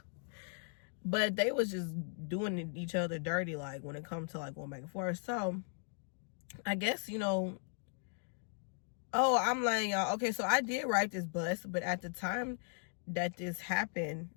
But they was just doing each other dirty, like, when it comes to, like, going back and forth. So, I guess, you know, oh, I'm like, y'all, okay, so I did ride this bus, but at the time that this happened,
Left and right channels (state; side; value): silent; right; 53 dB below the other